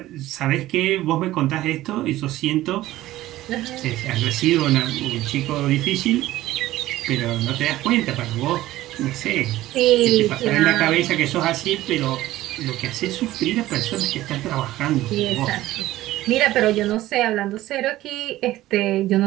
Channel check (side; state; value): left; quieter; 15.8 dB